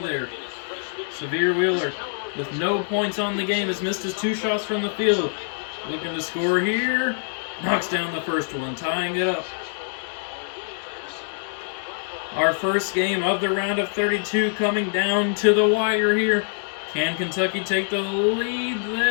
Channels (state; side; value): silent; right; 62 dB below the other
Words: Severe Wheeler, with no points on the game, has missed his 2 shots from the field. Looking to score here. Knocks down the first one, tying it up. Our first game of the round of 32 coming down to the wire here. Can Kentucky take the lead?